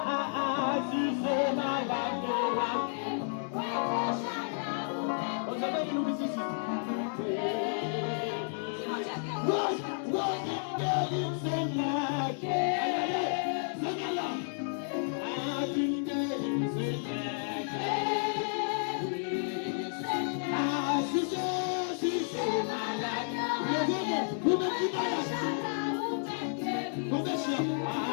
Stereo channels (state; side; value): silent; right; digital silence